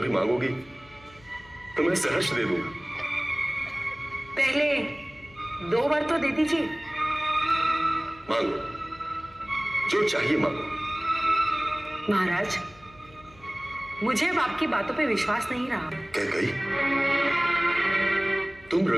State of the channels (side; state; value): left; noise; hum, 25 dB below the sound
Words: मांगोगी तो मैं सहर्ष दे दूंगा। पहले 2 वर तो दे दीजिए। मांगो, जो चाहिए मांगो। महाराज, मुझे अब आपकी बातों पे विश्वास नहीं रहा। कैकई, तुम